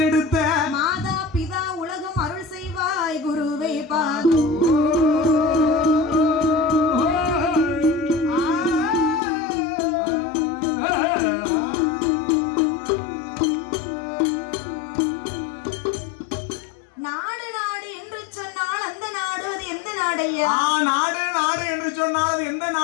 மாதா பிதா உலகம் அருள் செய்வாய் குருவே பாதோ. நாடு நாடு என்று சொன்னால் அந்த நாடு அது எந்த நாடையா? நாடு நாடு என்று சொன்னால் அது எந்த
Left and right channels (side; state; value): right; drops out; at 9.2 s